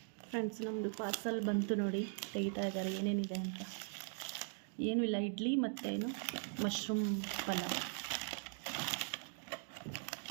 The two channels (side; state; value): left; silent; 51 dB below the other